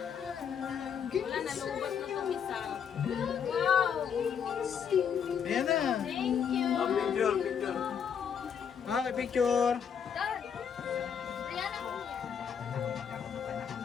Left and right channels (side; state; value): right; quieter; 7.5 dB